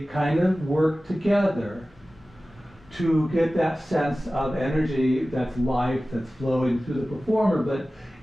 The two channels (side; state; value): both; normal; correlation 0.96